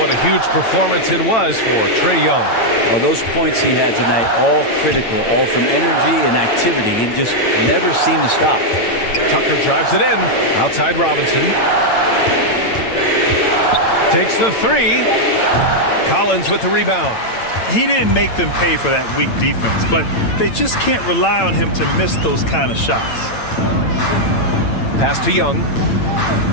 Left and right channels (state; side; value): late; right; 8.9 ms